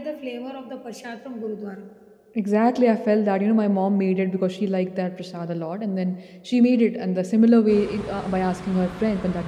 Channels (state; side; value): identical; both; correlation 1.00